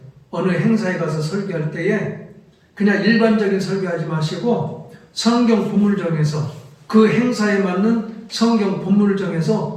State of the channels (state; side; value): identical; both; correlation 1.00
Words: 어느 행사에 가서 설교할 때에 그냥 일반적인 설교하지 마시고 성경 본문을 정해서 그 행사에 맞는 성경 본문을